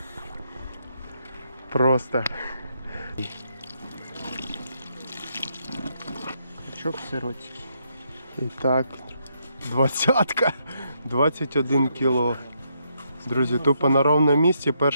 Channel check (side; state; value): both; inverted; correlation -0.77